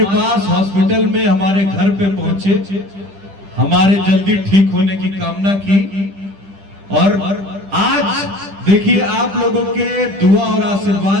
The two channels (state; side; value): late; left; 10 ms